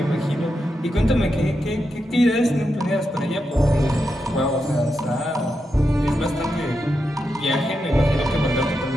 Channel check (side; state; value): both; normal; correlation 0.86